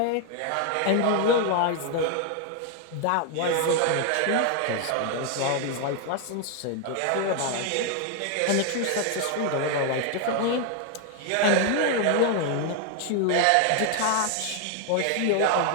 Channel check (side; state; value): both; different; correlation 0.00